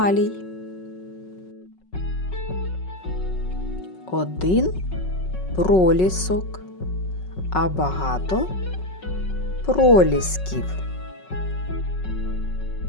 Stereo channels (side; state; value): right; late; 5.4 ms